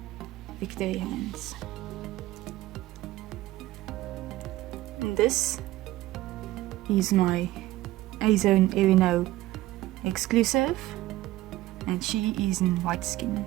victory hands. And this is my Azone Erino exclusive, and she is in white skin,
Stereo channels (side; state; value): left; quieter; 16.4 dB